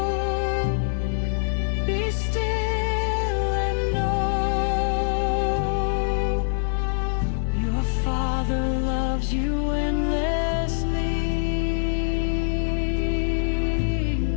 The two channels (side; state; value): right; silent; 62 dB below the other